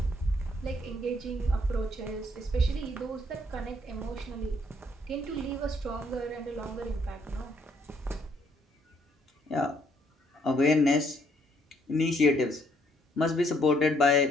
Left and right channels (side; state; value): both; normal; correlation 0.68